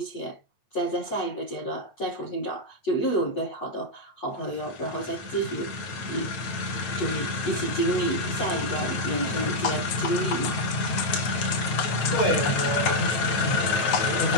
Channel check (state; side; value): late; right; 9.1 ms